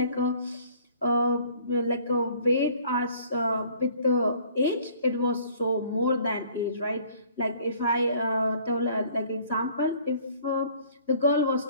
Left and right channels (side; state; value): both; inverted; correlation -0.55